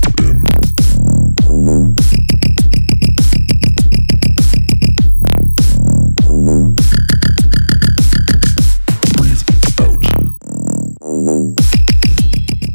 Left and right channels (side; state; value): both; inverted; correlation -1.00